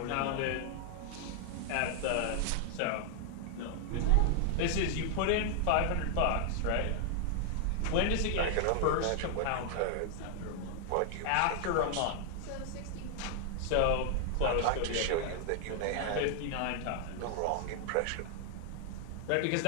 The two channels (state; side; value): different; both; correlation 0.00